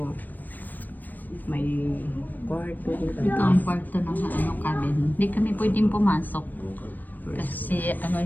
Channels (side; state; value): right; late; 0.088 ms